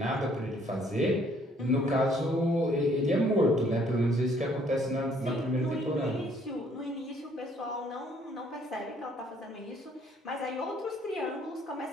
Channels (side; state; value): both; normal; correlation 0.63